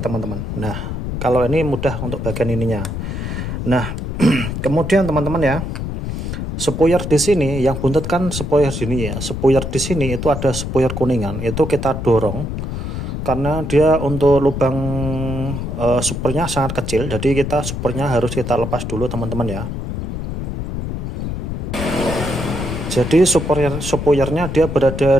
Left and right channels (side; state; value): left; noise; rumble, 4 dB below the sound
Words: teman-teman. Nah, kalau ini mudah untuk bagian ininya. Nah, kemudian teman-teman ya, spoiler di sini yang buntut kan spoiler sini ya. Spoiler di sini itu ada spoiler kuningan, itu kita dorong. Karena dia untuk lubang supernya sangat kecil, jadi kita supernya harus kita lepas dulu teman-teman ya. Jadi spoilernya dia berada